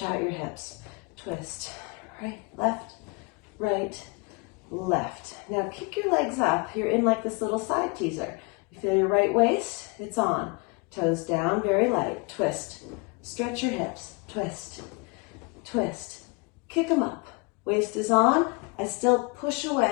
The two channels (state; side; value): quieter; right; 29.0 dB